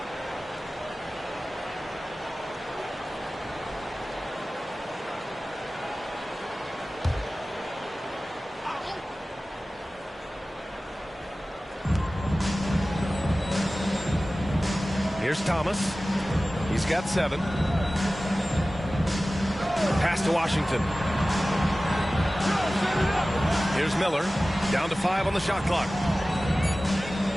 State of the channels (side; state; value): both; normal; correlation 0.96